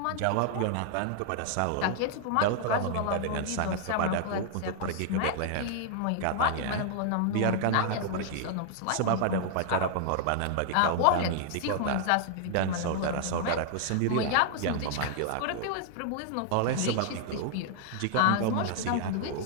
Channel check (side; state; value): both; different; correlation 0.00